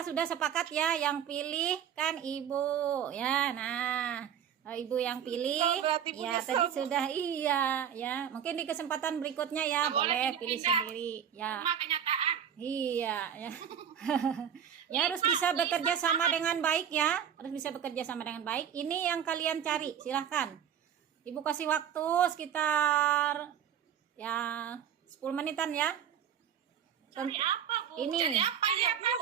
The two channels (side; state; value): left; quieter; 8.8 dB